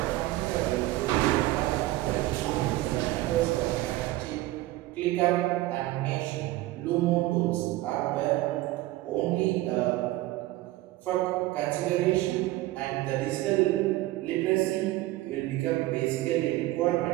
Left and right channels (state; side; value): quieter; left; 17.4 dB